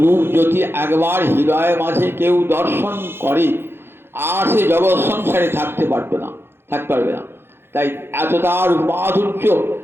রূপ যদি একবার হৃদয়ের মাঝে কেউ দর্শন করে, আর সে জগৎ সংসারে থাকতে পারবে না। তাই এতটা রূপাধুর্য,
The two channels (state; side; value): late; left; 0.11 ms